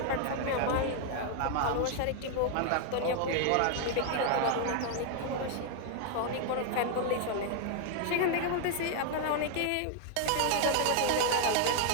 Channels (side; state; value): both; different; correlation 0.00